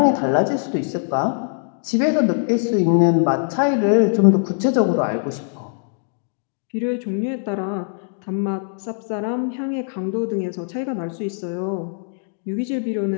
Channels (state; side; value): silent; right; digital silence